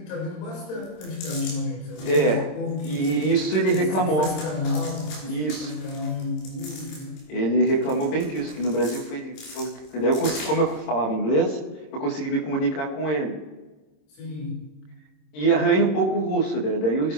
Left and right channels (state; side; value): late; right; 26 ms